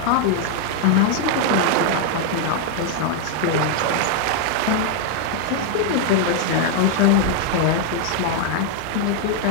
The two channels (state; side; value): different; both; correlation 0.00